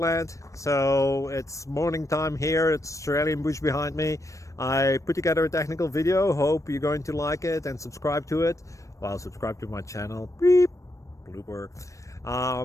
So it's morning time here. It's Australian bush behind me. I put together a technical video. Hope you're going to like it and subscribe to it. Well, subscribe to my channel. Beep. Blooper.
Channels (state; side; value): late; right; 0.15 ms